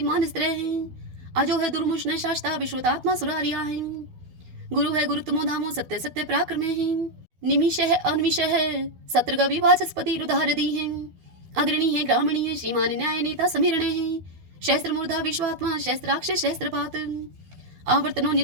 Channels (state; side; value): late; left; 12 ms